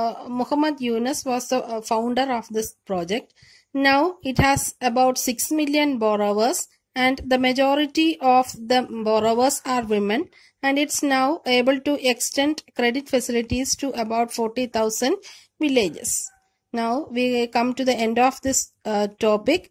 Muhammad Yunus was the founder of this project. Now it has about 6 million borrowers, and the majority of the borrowers are women, and it's now able to extend credit facilities to about 40,000 villages. Now we come to the end of this topic.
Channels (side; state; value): both; identical; correlation 1.00